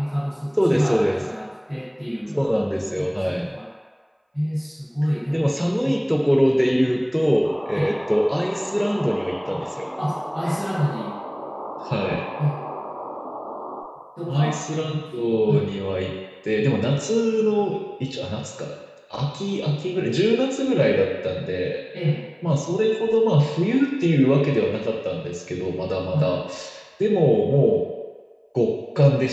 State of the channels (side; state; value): both; identical; correlation 1.00